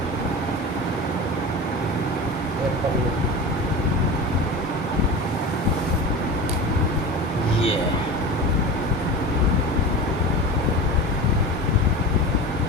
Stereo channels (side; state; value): both; normal; correlation 0.30